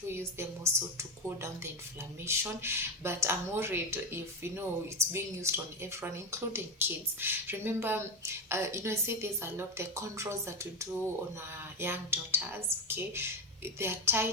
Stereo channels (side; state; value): both; normal; correlation 0.14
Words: do use them also to cool down the inflammation, but I'm worried if, it's being used on everyone, including kids. Remember, I say there's a lot, the controls that we do on our young daughters, okay, they are